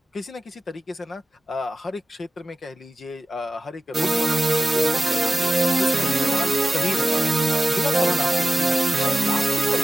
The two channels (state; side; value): normal; both; correlation 0.94